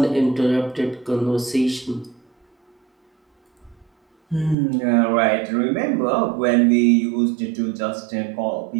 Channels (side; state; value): left; drops out; at 4.5 s